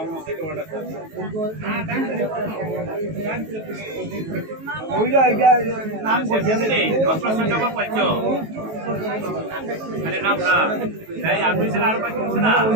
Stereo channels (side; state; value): left; late; 19 ms